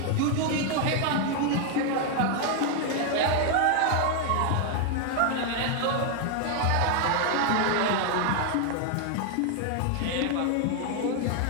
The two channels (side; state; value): both; different; correlation 0.00